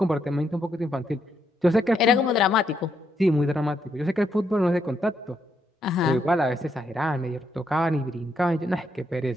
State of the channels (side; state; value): both; normal; correlation 0.77